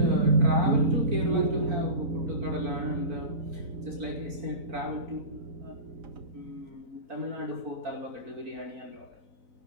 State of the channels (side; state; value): left; late; 4.0 ms